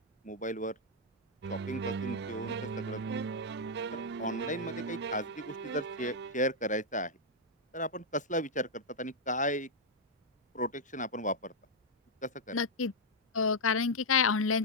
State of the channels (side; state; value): both; normal; correlation -0.04